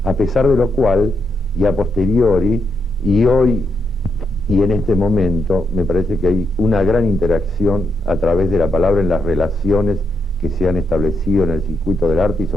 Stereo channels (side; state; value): both; normal; correlation 0.81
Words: a pesar de lo cual, y a posteriori, y hoy y en este momento, me parece que hay una gran interacción a través de la palabra en las relaciones que se han establecido en el circuito del arte y